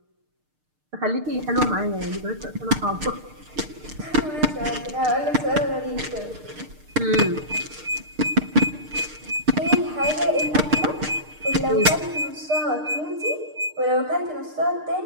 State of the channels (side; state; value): left; late; 6.6 ms